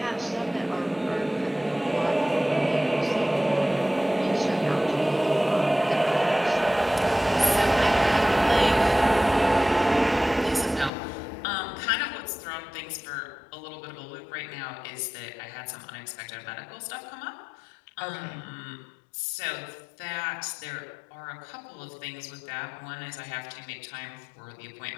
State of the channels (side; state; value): right; drops out; at 10.9 s